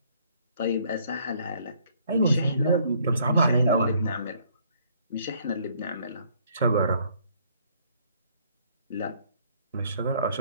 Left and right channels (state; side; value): inverted; both; correlation -0.63